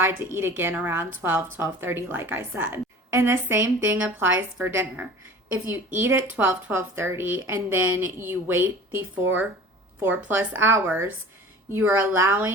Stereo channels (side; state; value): both; normal; correlation 0.41